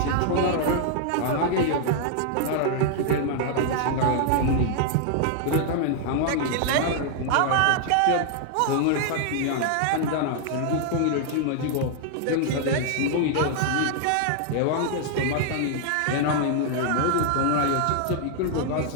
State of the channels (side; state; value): both; different; correlation 0.00